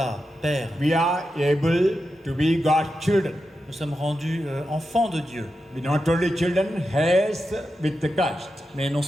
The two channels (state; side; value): normal; both; correlation 0.89